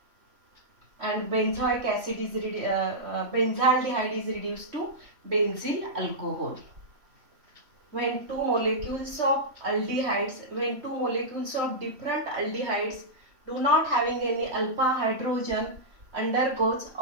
and benzaldehyde is reduced to benzyl alcohol. When two molecules of different aldehydes do not having any alpha hydrogen undergoes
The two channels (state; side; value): late; left; 3.1 ms